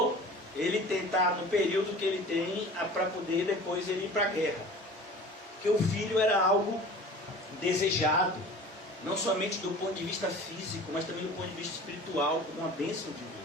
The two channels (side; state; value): both; normal; correlation 0.41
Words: ele tentar no período que ele tem para poder depois ele ir para a guerra. Porque o filho era algo desejado, não somente do ponto de vista físico, mas também do ponto de vista espiritual, como uma bênção de Deus.